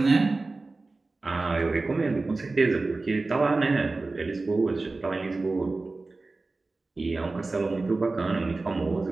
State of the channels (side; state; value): left; quieter; 3.5 dB